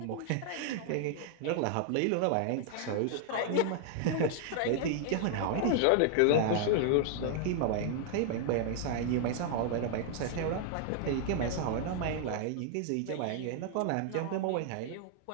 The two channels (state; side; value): different; both; correlation 0.00